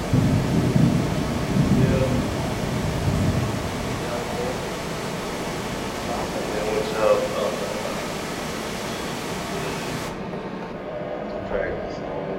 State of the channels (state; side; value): identical; both; correlation 1.00